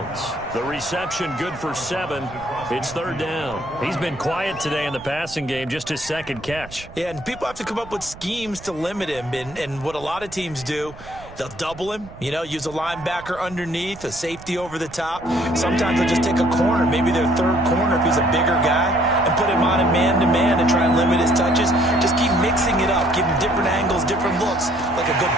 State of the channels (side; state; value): right; noise; rumble, 18 dB below the sound